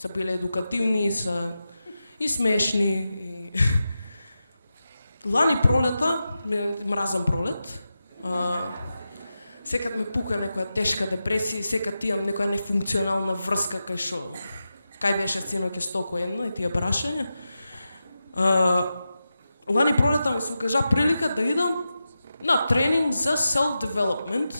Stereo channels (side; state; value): both; inverted; correlation -0.91